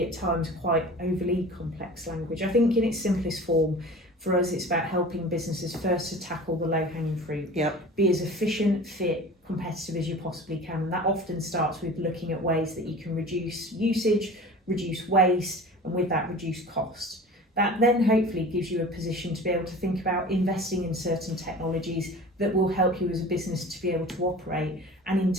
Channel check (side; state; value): both; normal; correlation 0.39